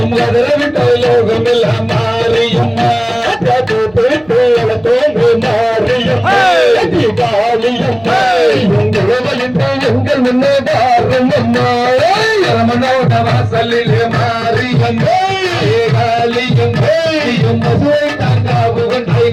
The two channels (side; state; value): right; noise; hum, 28 dB below the sound